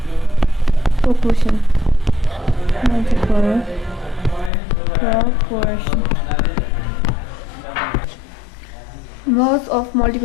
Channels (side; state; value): right; drops out; at 4.5 s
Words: proportion. Laws of